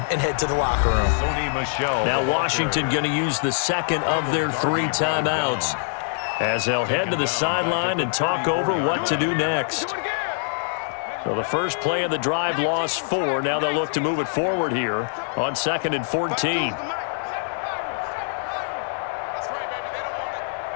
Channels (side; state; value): right; silent; 63 dB below the other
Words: and head to the locker room. Now Washington going to use the 2nd of their 3 timeouts as they'll head to the sideline and talk over what to do next. So the first play of the drive lost 4. Now they'll look to move it forward here on 2nd and 14.